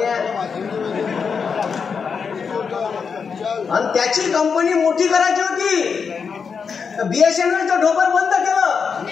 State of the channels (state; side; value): quieter; right; 5.9 dB